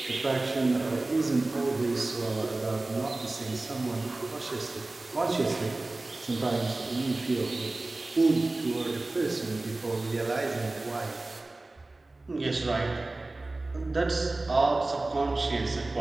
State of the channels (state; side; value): quieter; left; 3.0 dB